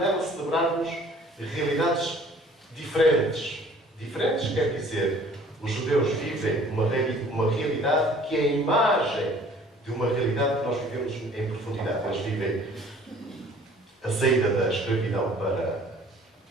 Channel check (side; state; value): both; normal; correlation 0.52